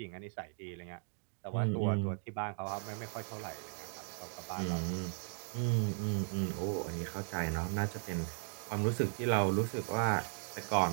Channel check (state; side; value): silent; left; digital silence